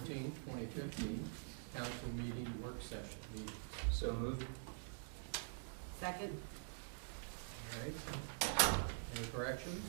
2015 council meeting work session meetings. So moved. Second. All right. Any corrections?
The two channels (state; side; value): silent; left; digital silence